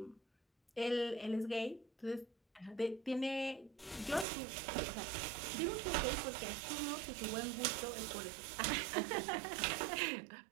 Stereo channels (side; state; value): left; drops out; at 4.2 s